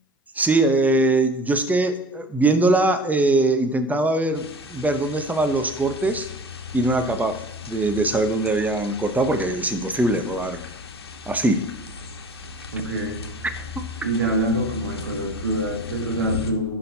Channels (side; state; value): both; normal; correlation 0.41